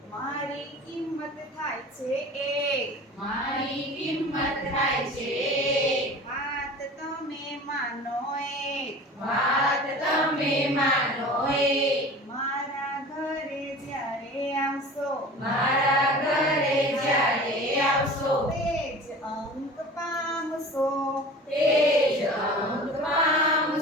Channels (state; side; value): normal; both; correlation 0.39